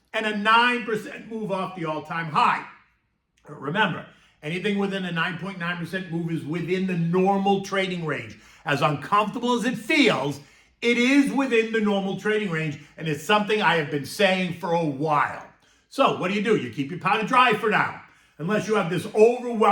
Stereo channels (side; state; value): both; identical; correlation 1.00